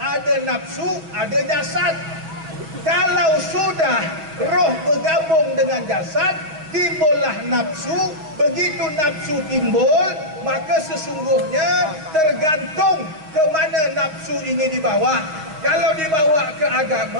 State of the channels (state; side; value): late; left; 6.4 ms